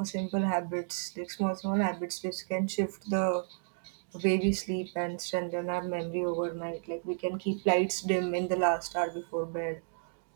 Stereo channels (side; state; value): left; silent; digital silence